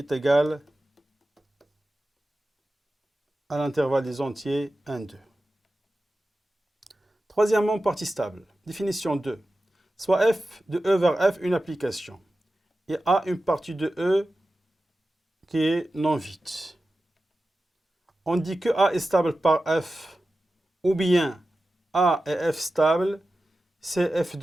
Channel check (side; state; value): both; normal; correlation 0.94